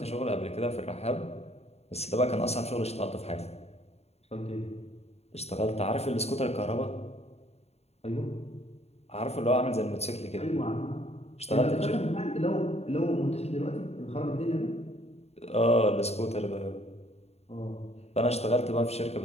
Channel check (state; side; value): late; right; 0.30 ms